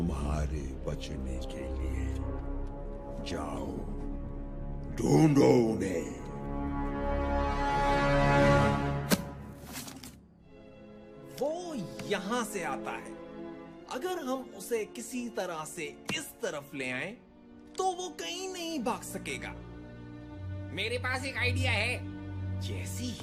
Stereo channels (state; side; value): identical; both; correlation 1.00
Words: बचने के लिए। जाओ, ढूंढो उन्हें। वो यहाँ से आता है। अगर हम उसे किसी तरह से इस तरफ ले आए तो वो कहीं नहीं भाग सकेगा। मेरे पास एक आइडिया है। जैसे